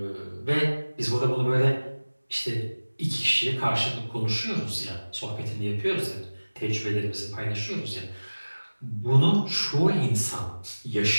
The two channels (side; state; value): both; inverted; correlation -1.00